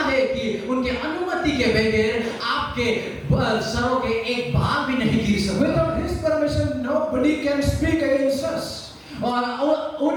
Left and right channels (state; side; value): identical; both; correlation 1.00